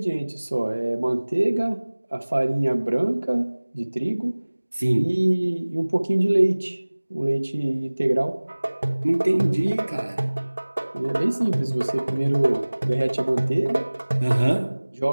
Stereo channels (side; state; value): both; inverted; correlation -1.00